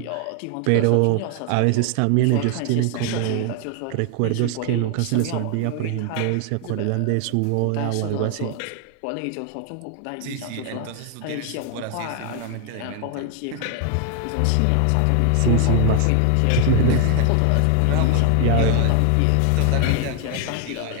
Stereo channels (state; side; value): different; both; correlation 0.00